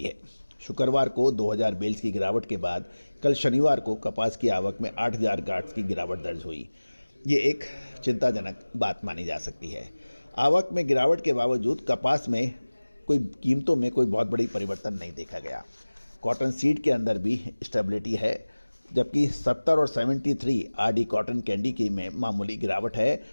है। शुक्रवार को 2,000 बेल्स की गिरावट के बाद कल शनिवार को कपास की आवक में 8,000 गांठ की गिरावट दर्ज हुई। ये एक चिंताजनक बात मानी जा सकती है। आवक में गिरावट के बावजूद कपास में कीमतों में कोई बहुत बड़ी परिवर्तन नहीं देखा गया। कॉटन सीड के अंदर भी स्टेबिलिटी है, जबकि 70 और 73 आरडी कॉटन कैंडी की में मामूली गिरावट है,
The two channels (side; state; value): both; inverted; correlation -1.00